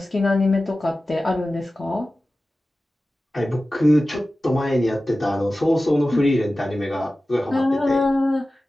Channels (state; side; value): normal; both; correlation 0.95